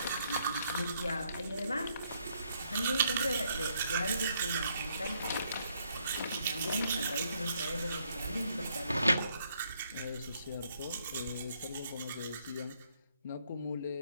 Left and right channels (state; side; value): inverted; both; correlation -0.72